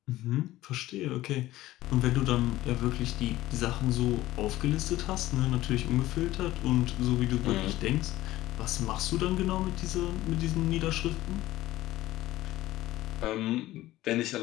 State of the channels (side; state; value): right; quieter; 16.1 dB